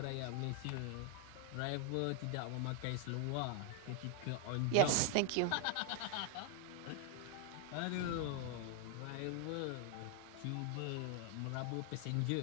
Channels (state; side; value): different; both; correlation 0.00